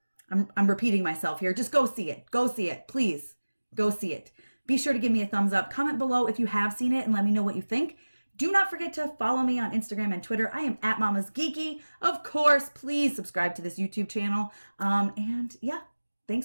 I'm repeating myself here. Just go see it. Go see it. Please go see it. Be sure to give me a thumbs up. Comment below if you have seen it and let me know what you think. Do not forget to follow me on Instagram and Twitter. I am at Mama's Geeky. Of course, please subscribe to this YouTube channel. And yeah,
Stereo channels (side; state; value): both; inverted; correlation -1.00